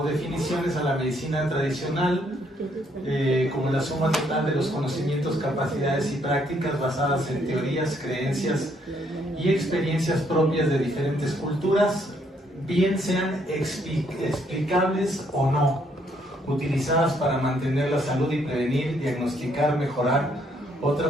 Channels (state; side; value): normal; both; correlation 0.70